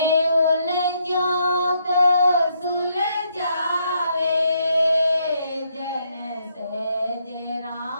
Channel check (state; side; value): inverted; both; correlation -0.74